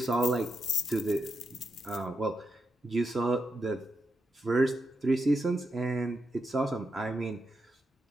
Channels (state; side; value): normal; both; correlation 0.85